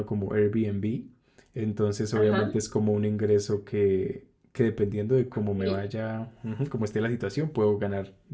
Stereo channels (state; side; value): identical; both; correlation 1.00